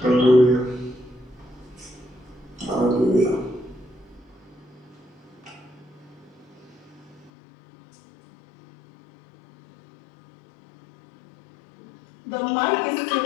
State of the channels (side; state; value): right; drops out; at 7.3 s